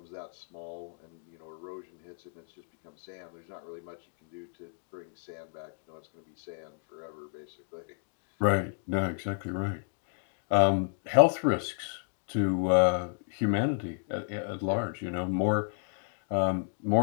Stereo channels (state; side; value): silent; right; digital silence